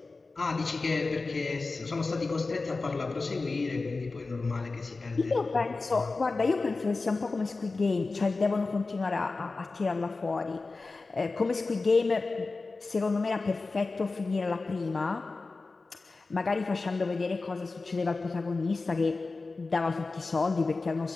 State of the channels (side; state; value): right; quieter; 3.7 dB